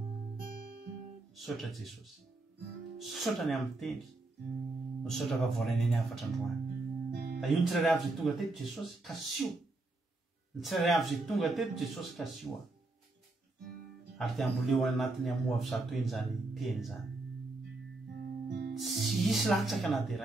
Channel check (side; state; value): left; quieter; 3.0 dB